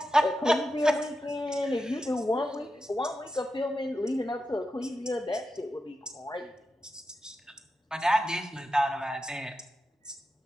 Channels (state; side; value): normal; both; correlation 0.89